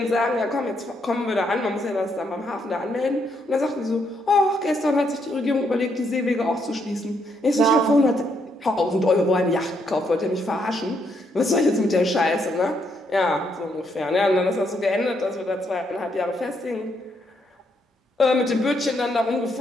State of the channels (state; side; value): normal; both; correlation 0.75